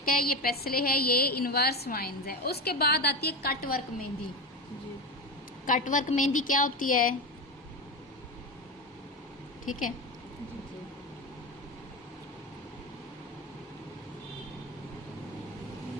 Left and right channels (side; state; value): both; normal; correlation 0.20